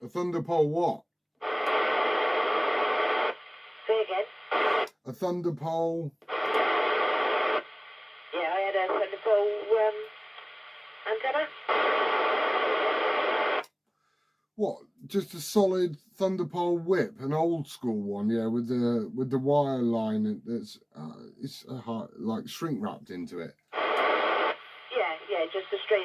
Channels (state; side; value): identical; both; correlation 1.00